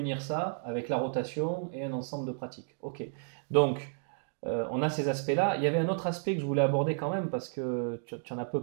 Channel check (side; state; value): left; silent; digital silence